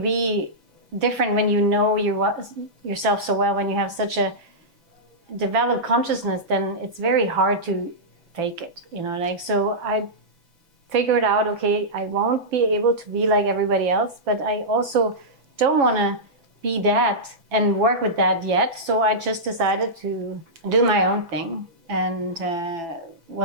different when you know yourself so well, when you have such a developed consciousness? Then it's very hard to fake it, so I figured out, okay, I won't be able to be like everybody else, but I also don't want to be that and work with that yet, so I just decided to do my own thing. And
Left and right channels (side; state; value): left; late; 6.0 ms